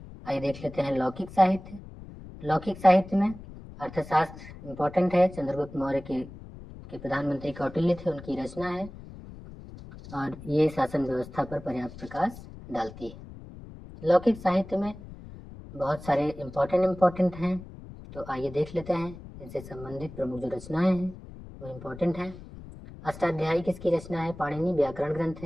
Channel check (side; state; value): left; noise; rumble, 15 dB below the sound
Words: आइए देख लेते हैं लौकिक साहित्य। लौकिक साहित्य में अर्थशास्त्र इम्पोर्टेंट है। चंद्रगुप्त मौर्य के प्रधानमंत्री कौटिल्य थे, उनकी रचना है और ये शासन व्यवस्था पर पर्याप्त प्रकाश डालती है। लौकिक साहित्य में बहुत सारे इम्पोर्टेंट हैं, तो आइए देख लेते हैं इनसे संबंधित प्रमुख जो रचनाएं हैं वो इम्पोर्टेंट है। अष्टाध्यायी किसकी रचना है, पाणिनि व्याकरण ग्रंथ